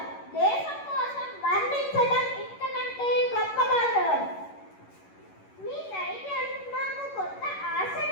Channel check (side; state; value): right; late; 11 ms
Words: దేశం కోసం మరణించడం ఇంతకంటే గొప్ప గౌరవం. మీ ధైర్యం నాకు కొత్త